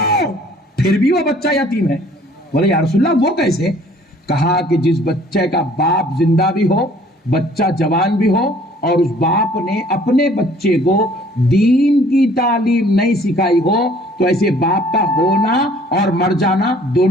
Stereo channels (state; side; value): normal; both; correlation 0.56